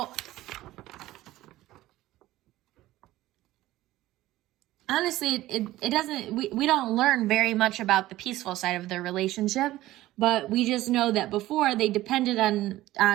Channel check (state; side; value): quieter; left; 16.0 dB